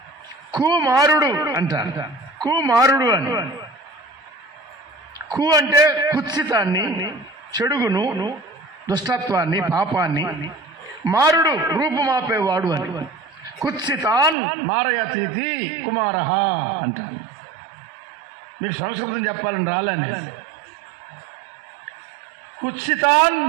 కుమారుడు అంటారు. కుమారుడు అని, కు అంటే కుత్సితాన్ని, చెడుగును, దుష్టత్వాన్ని, పాపాన్ని, మారుడు రూపుమాపేవాడు అని. కుత్సితాన్ మారయతీతి కుమారః అంటారు. మీకు సంస్కృతం చెప్పాలని రాలని. కుత్సితాన్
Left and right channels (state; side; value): drops out; left; at 14.4 s